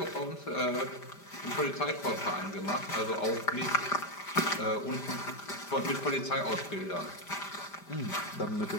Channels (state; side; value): late; right; 5.1 ms